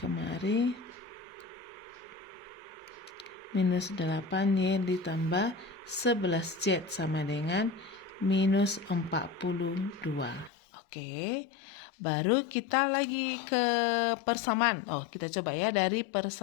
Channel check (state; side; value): drops out; right; at 10.5 s